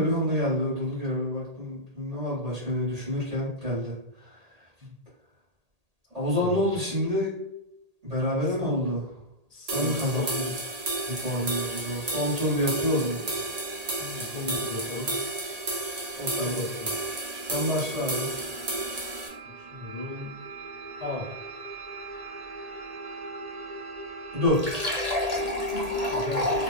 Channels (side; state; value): left; late; 1.8 ms